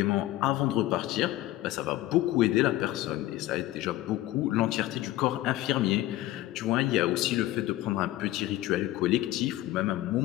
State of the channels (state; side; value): quieter; right; 15.8 dB